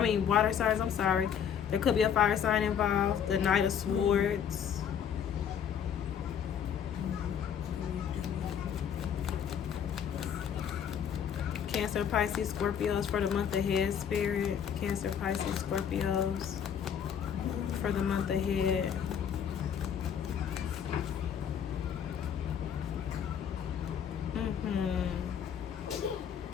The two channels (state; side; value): quieter; right; 8.2 dB